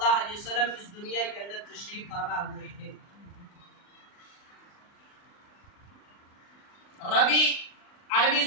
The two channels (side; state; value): right; late; 39 ms